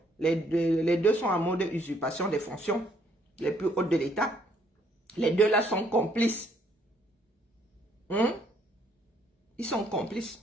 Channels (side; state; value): both; normal; correlation 0.67